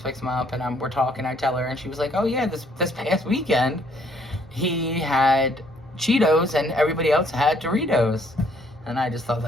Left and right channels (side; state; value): both; normal; correlation 0.65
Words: him up, and we're talking. I tell her, and she was like, oh yeah, this past weekend he had Cheetos and everybody else had Doritos. And I just thought